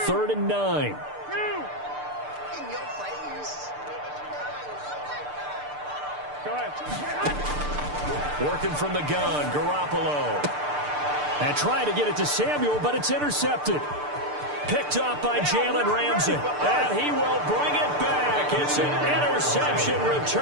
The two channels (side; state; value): left; late; 6.7 ms